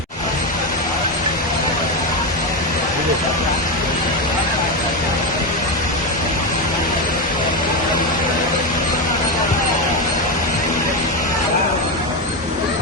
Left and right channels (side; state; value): both; normal; correlation 0.12